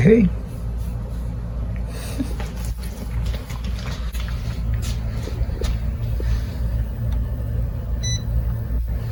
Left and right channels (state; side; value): identical; both; correlation 1.00